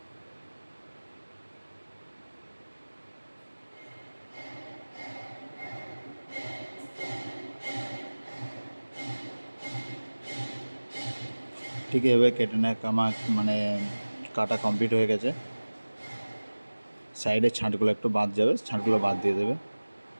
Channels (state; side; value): inverted; both; correlation -1.00